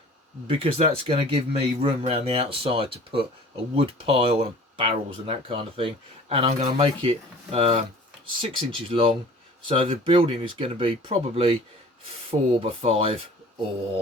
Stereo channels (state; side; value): normal; both; correlation 0.46